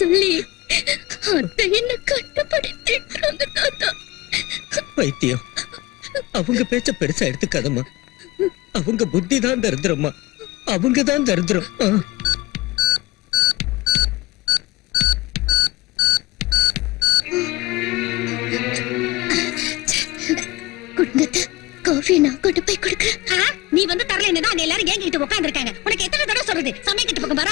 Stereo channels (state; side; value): quieter; right; 20.1 dB